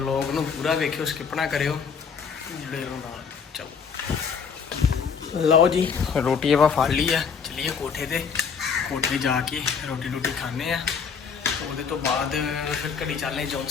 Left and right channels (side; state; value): right; quieter; 6.2 dB